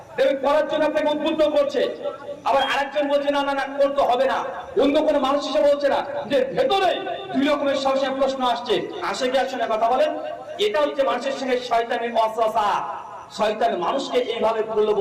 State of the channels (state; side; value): identical; both; correlation 1.00